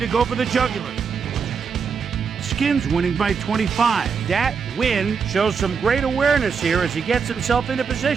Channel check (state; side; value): quieter; left; 6.0 dB